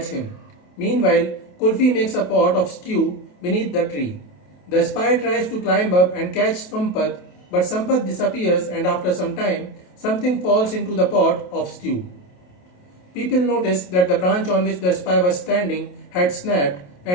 him. Meanwhile, Kulfi makes a pot of stew beneath the tree. The spy tries to climb up and catch Sampath, but Sampath disappears and after some time, something falls into the pot of stew. People notice that the branch on which the spy was standing had snapped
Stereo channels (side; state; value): right; late; 28 ms